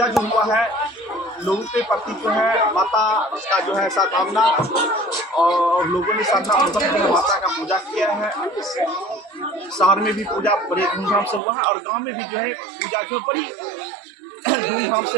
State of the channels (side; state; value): left; drops out; at 11.4 s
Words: जो हुआ है, लोगों के प्रति जो है माता का जो है सद्भावना और लोगों ने श्रद्धापूर्वक माता का पूजा किया है। शहर में भी पूजा बड़े धूमधाम से हुआ है और गांव में भी जो है पूजा जो बड़ी धूमधाम से